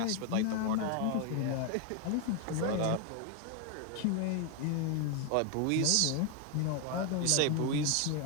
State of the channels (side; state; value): both; different; correlation 0.01